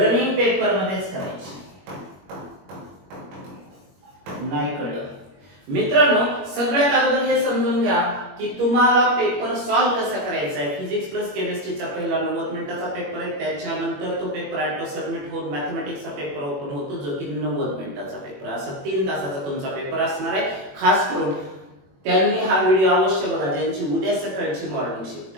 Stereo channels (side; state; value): left; late; 21 ms